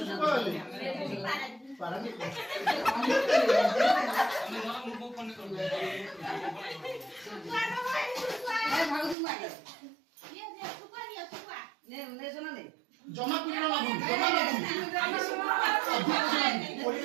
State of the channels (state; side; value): drops out; left; at 9.2 s